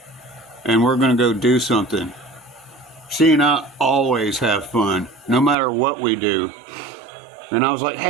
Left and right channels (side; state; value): left; drops out; at 5.6 s